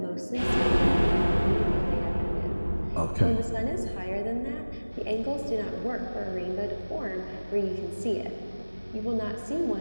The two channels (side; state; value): both; inverted; correlation -1.00